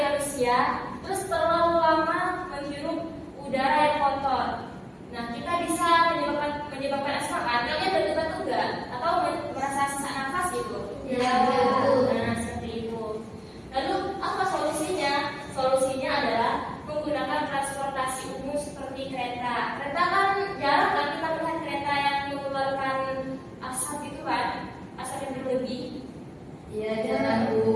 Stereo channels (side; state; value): both; identical; correlation 1.00